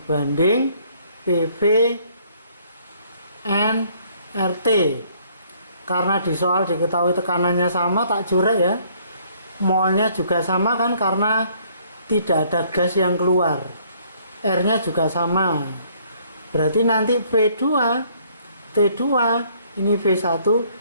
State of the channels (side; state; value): both; inverted; correlation -0.63